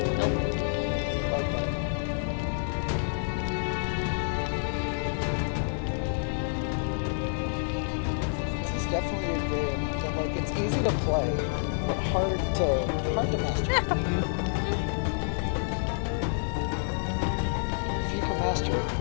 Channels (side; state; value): right; silent; digital silence